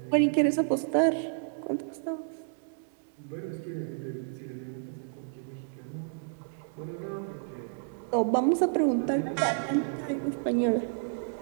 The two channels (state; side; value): silent; left; digital silence